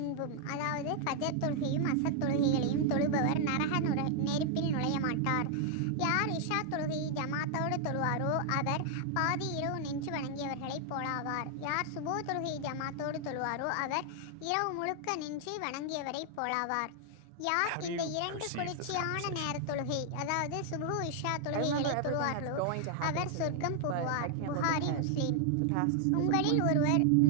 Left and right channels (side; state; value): both; different; correlation 0.00